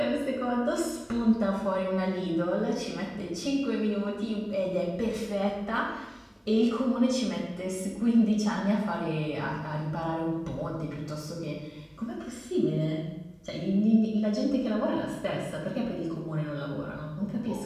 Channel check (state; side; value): identical; both; correlation 1.00